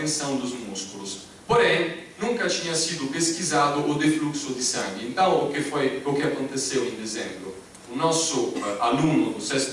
dos músculos. Porém, nunca tinha sido pesquisado o defluxo de sangue. Então, o que aconteceu em dezembro? O nosso aluno do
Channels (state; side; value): identical; both; correlation 1.00